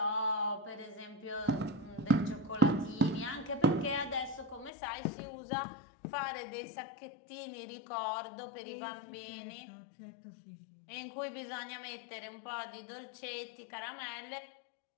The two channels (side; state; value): right; drops out; at 4.7 s